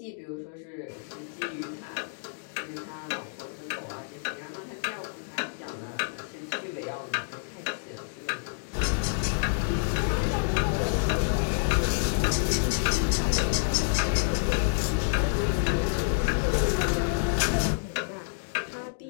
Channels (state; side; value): silent; right; digital silence